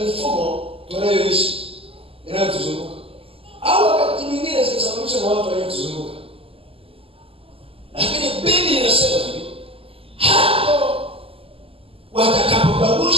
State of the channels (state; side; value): late; left; 0.27 ms